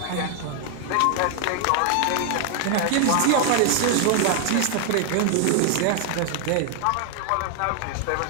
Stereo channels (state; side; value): different; both; correlation 0.00